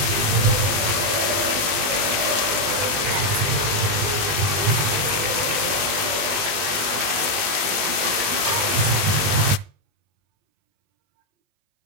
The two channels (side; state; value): left; late; 20 ms